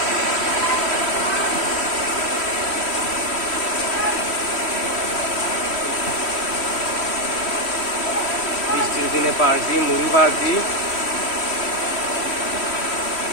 বৃষ্টির দিনে পার্টি, মুড়ি পার্টি।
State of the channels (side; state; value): right; late; 3.1 ms